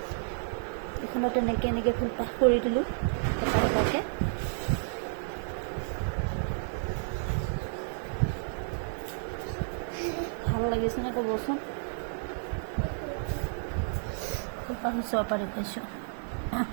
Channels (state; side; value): silent; left; digital silence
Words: এখনত এনেকৈ ফুলপাহ কৰি দিলোঁ এটা এটাকৈ। ভাল লাগিছেনে ক'বচোন। ফুলপাহ ওচৰৰ পৰা দেখুৱাইছোঁ।